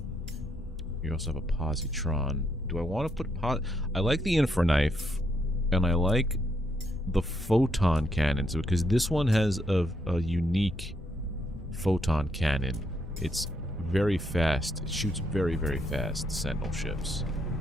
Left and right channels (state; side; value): normal; both; correlation 0.76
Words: You also have a positron. Do I want to put I like the infraknife, and I like the photon cannons because this one has a unique photon cannon. It's very fast. It shoots very, very fast. Sentinel ships.